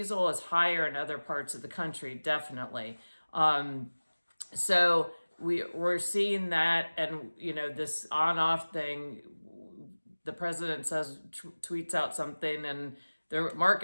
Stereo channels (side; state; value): both; inverted; correlation -1.00